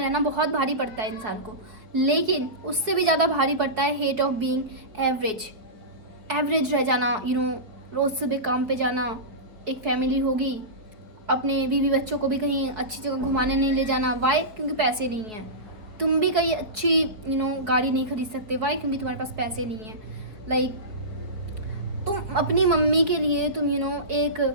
बहुत भारी पड़ता है इंसान को, लेकिन उससे भी ज़्यादा भारी पड़ता है hate of being average. Average रह जाना, रोज़ सुबह काम पे जाना, एक फैमिली होगी, अपने बीवी बच्चों को भी कहीं अच्छी जगह घुमाने नहीं ले जाना। वाई? क्योंकि पैसे नहीं हैं। तुम भी कहीं अच्छी गाड़ी नहीं खरीद सकते। वाई? क्योंकि तुम्हारे पास पैसे नहीं हैं। लाइक तुम अपनी मम्मी के लिए तुम एक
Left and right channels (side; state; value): left; late; 4.4 ms